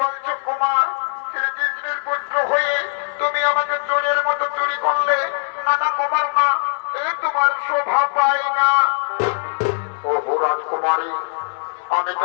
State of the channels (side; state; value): right; silent; digital silence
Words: বলছো কুমার শ্রীকৃষ্ণের পুত্র হয়ে তুমি আমাকে চোরের মতো চুরি করলে না না কুমার না এই তোমার শোভা পায় না ওহো রাজকুমারী আমি